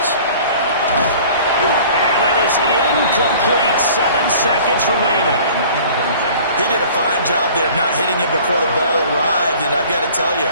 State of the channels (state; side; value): inverted; both; correlation -0.48